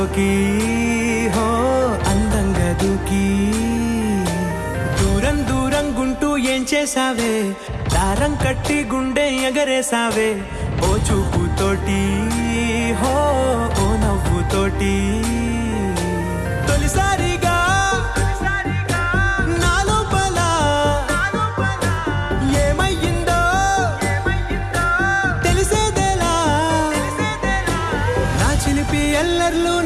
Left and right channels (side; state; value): both; identical; correlation 1.00